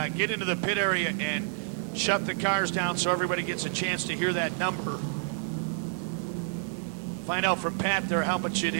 get into the pit area and shut the cars down so everybody gets a chance to hear that number. Find out from Pat there how much it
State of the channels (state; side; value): silent; left; digital silence